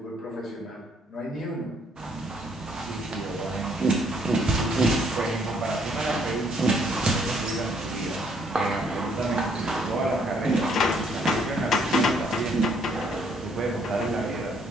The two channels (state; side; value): normal; both; correlation 0.67